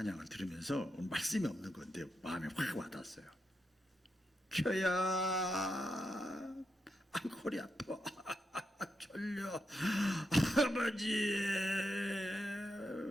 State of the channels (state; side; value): normal; both; correlation 0.85